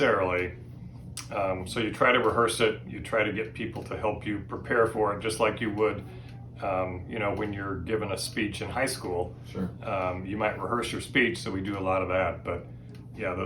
So you try to rehearse it, you try to get people to help you prepare for it, just like you would when you're given a speech in high school. Sure. You might rehearse your speech, so we do a lot of that. But yeah,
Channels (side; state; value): both; identical; correlation 1.00